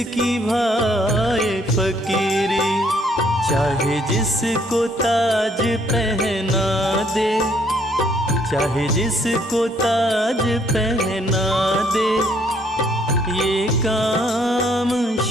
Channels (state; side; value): normal; both; correlation 0.66